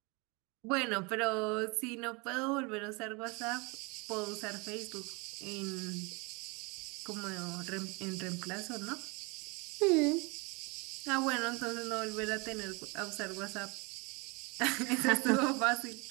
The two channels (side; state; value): left; quieter; 28.7 dB